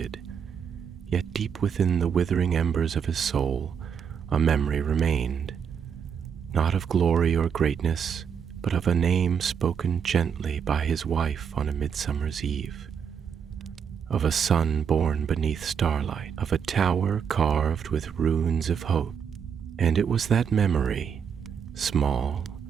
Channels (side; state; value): left; quieter; 7.3 dB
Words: Yet deep within the withering embers of his soul, a memory remained, not of glory or greatness, but of a name spoken gently by his wife on a midsummer's eve, of a son born beneath starlight, of a tower carved with runes of hope. And it was that memory, small